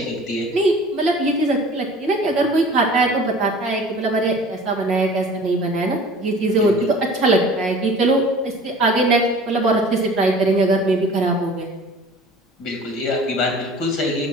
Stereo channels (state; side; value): normal; both; correlation 0.44